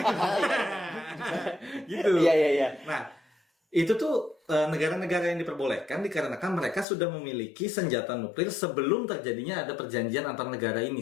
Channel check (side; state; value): right; drops out; at 6.9 s